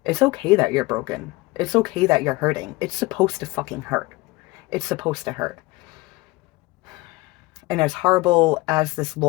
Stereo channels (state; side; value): quieter; right; 21.7 dB